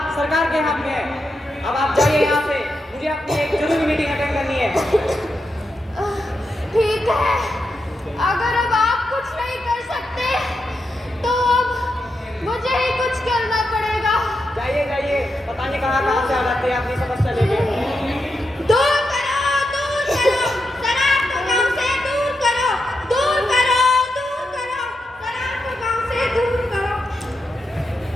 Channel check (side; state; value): both; normal; correlation 0.86